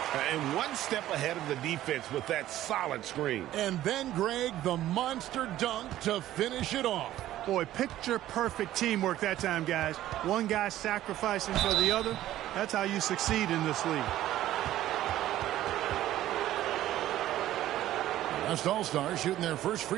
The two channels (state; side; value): quieter; left; 13.7 dB